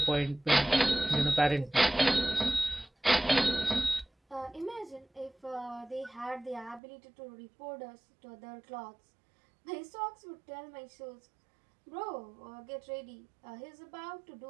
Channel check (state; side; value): drops out; left; at 6.8 s